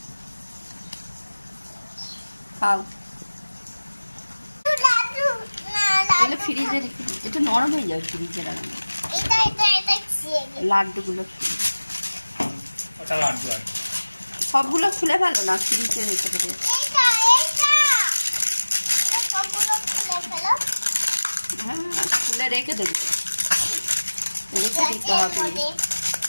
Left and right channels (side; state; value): both; inverted; correlation -1.00